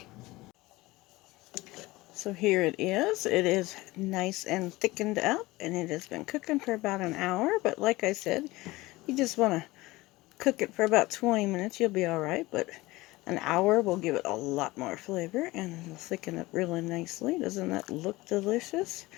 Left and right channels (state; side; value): quieter; right; 20.1 dB